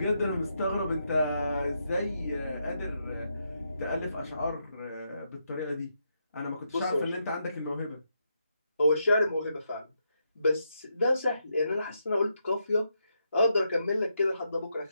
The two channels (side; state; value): both; inverted; correlation -0.81